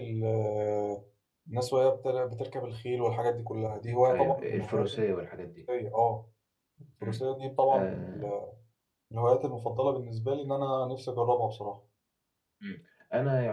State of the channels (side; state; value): both; identical; correlation 1.00